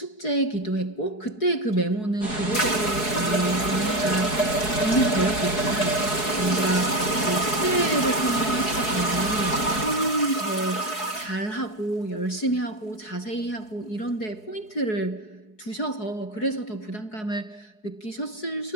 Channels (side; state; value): right; late; 4.7 ms